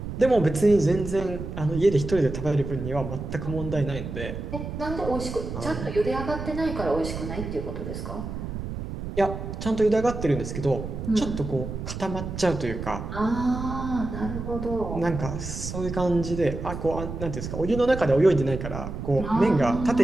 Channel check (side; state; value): right; noise; rumble, 7 dB below the sound